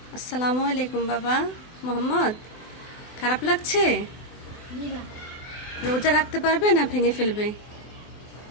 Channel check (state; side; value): late; right; 24 ms